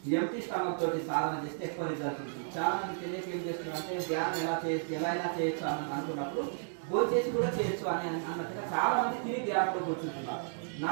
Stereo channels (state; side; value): silent; left; digital silence